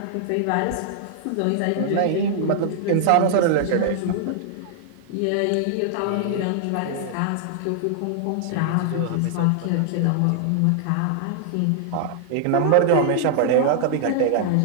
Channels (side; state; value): both; different; correlation -0.01